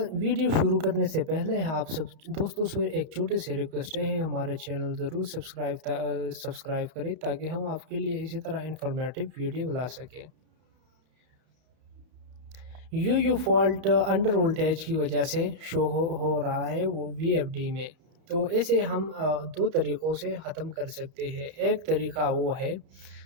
ویڈیو شروع کرنے سے پہلے آپ سب دوستوں سے ایک چھوٹی سی ریکویسٹ ہے، ہمارے چینل ضرور سبسکرائب کریں تاکہ ہم آپ کے لیے اسی طرح انفارمیٹیو ویڈیو لا سکیں۔ یو فالٹ انڈر وولٹیج کی وجہ سے شو ہو رہا ہے وہ وی ایف ڈی میں، تو اسے ہم دو طریقوں سے ختم کر سکتے ہیں۔ ایک طریقہ وہ ہے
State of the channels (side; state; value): left; late; 32 ms